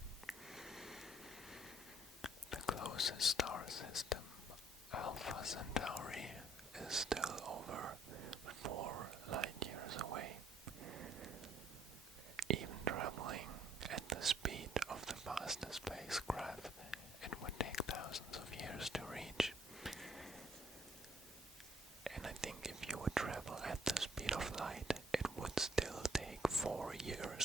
The closest star system, Alpha Centauri, is still over 4 light years away. Even traveling at the speed of the fastest spacecraft, it would take thousands of years to reach. And I think if you would travel at the speed of light, it would still take 4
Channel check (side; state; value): both; normal; correlation 0.65